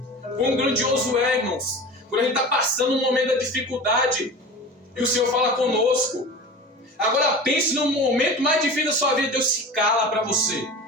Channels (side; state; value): both; normal; correlation 0.34